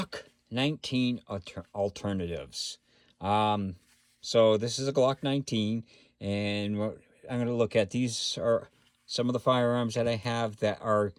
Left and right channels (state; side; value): identical; both; correlation 1.00